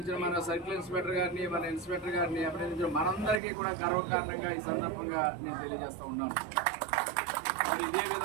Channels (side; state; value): left; drops out; at 3.4 s